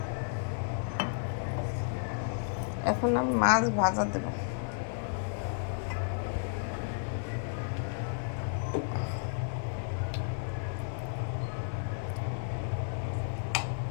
এখন আমি মাছ ভাজা দেব।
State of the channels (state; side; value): silent; right; digital silence